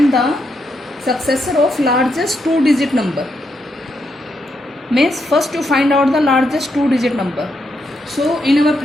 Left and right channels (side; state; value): both; normal; correlation 0.80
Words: the successor of largest two-digit number. Means first you find out the largest two-digit number. So in our